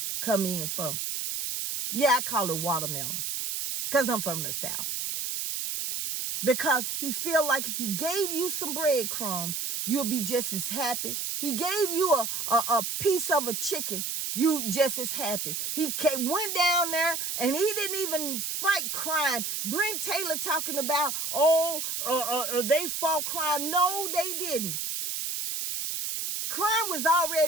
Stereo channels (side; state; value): right; noise; hiss, 3 dB below the sound